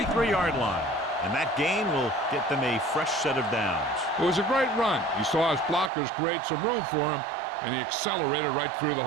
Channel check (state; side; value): drops out; left; at 5.9 s